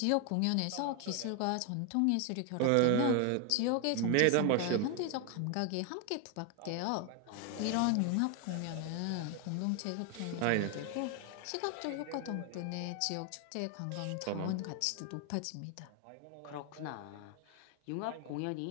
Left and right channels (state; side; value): different; both; correlation 0.01